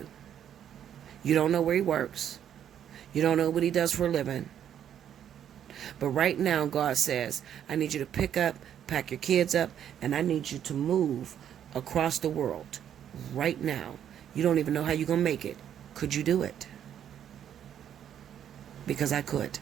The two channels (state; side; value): quieter; left; 9.7 dB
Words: You don't know where he works. You don't know what he does for a living. But right now, God says, I need you to pick up, pack your kids up, and I need you to move across the world right now. You don't even know how you're going to make it. Could you do it? Because I could.